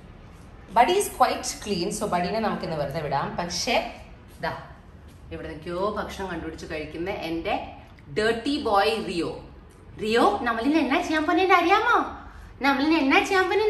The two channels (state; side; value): identical; both; correlation 1.00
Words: buddy is quite clean. So ബഡീനെ നമുക്കിന്ന് വെറുതെ വിടാം. പക്ഷേ ദാ ഇവിടെ നിൽക്കോ ഭക്ഷണം കണ്ടുപിടിച്ച് കഴിക്കുന്ന എന്റെ ഡേർട്ടി ബോയ് റിയോ. റിയോ നമ്മളിൽ എന്നാ ചെയ്യാൻ പോന്നേന്ന് അറിയാമോ? നമ്മളിൽ എന്നാ ചെയ്യാൻ